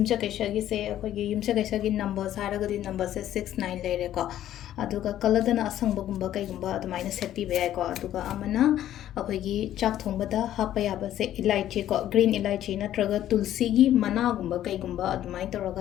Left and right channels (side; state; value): right; quieter; 12.1 dB